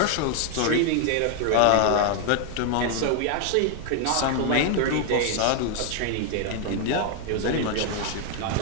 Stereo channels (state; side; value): different; both; correlation 0.00